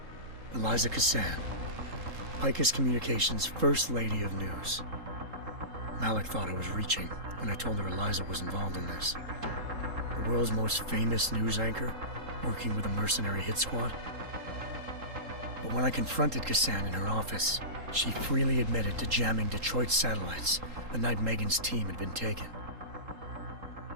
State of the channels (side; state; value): left; late; 3.8 ms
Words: 𝘼𝙗𝙘𝙀, 𝘼𝙗𝙘𝙀 Communications' First Lady of News. Malik thought I was reaching when I told her Eliza was involved in this. The world's most famous news anchor, working with a mercenary hit squad. But when I confronted Kassan in her office, she freely admitted to jamming Detroit's satellites the night Megan's team had been taken.